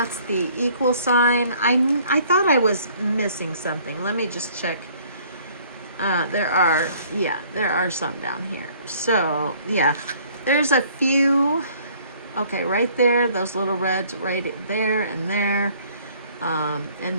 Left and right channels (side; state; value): both; inverted; correlation -0.58